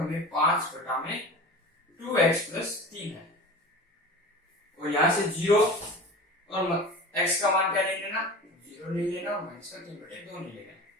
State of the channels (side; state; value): both; normal; correlation 0.35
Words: 5/2x प्लस 3 है, और यहां से 0 और x का मान क्या ले लेना, 0 ले लेना, और माइनस का 3/2 नहीं लेना।